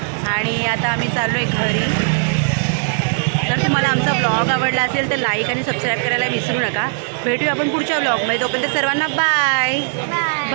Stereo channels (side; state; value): left; silent; 67 dB below the other